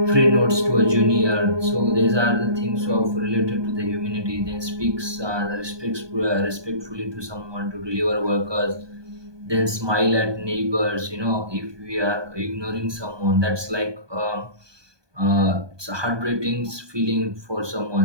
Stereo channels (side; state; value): left; late; 1.2 ms